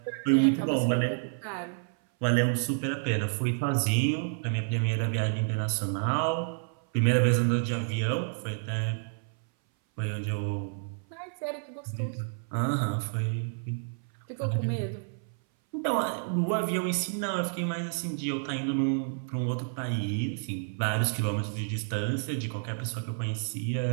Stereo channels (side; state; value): left; silent; 58 dB below the other